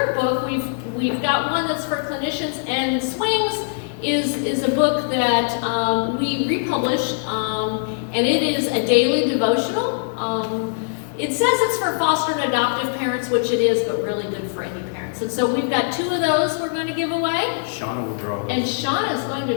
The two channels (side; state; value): right; silent; digital silence